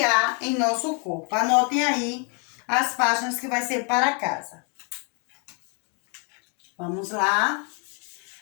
há em nosso corpo. Anotem aí as páginas que vai ser para casa. Vamos lá.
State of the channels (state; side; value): quieter; right; 36.4 dB